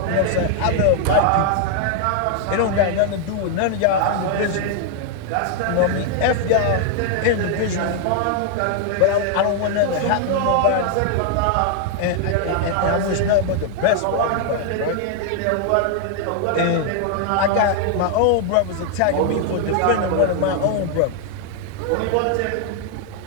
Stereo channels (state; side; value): different; both; correlation 0.00